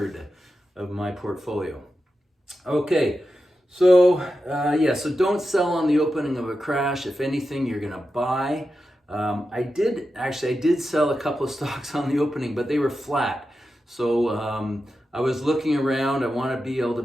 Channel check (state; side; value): normal; both; correlation 0.90